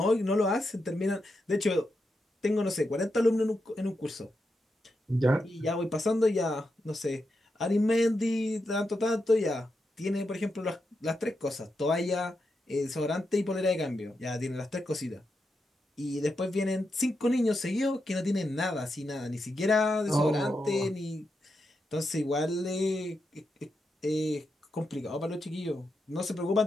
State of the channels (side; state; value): both; normal; correlation 0.86